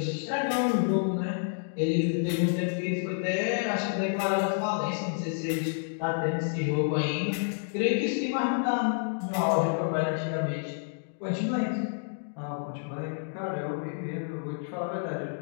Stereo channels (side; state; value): right; silent; digital silence